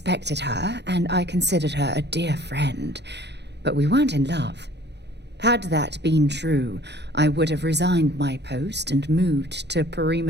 her, and I considered her a dear friend, but we weren't in love. Had that been true, I would have resigned my post and moved to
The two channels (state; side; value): late; left; 0.50 ms